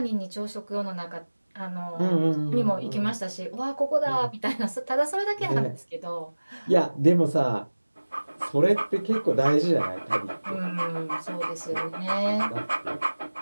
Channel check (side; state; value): both; inverted; correlation -1.00